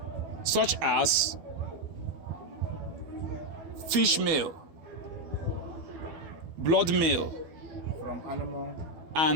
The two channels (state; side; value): late; left; 12 ms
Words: such as fish meal, blood meal, from animal